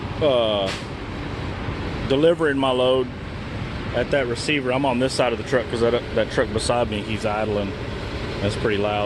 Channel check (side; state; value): both; identical; correlation 1.00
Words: delivering my load at that receiver. I'm on this side of the truck because that truck beside me, he's idling. That's pretty